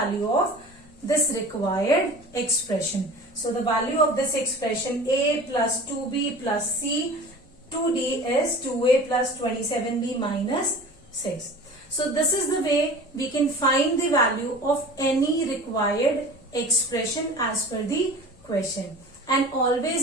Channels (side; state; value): left; noise; rumble, 27 dB below the sound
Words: of this required expression. So the value of this expression, a plus 2b plus c, 2d is 2a plus 27b minus 6. So this is the way we can find the value of any required expression as per the question. And